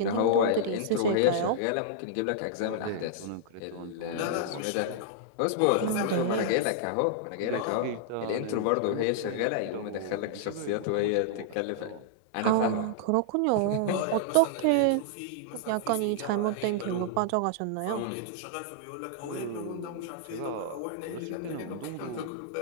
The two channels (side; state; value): both; different; correlation -0.02